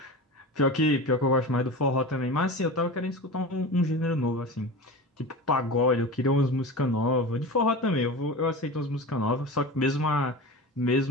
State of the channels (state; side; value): normal; both; correlation 0.30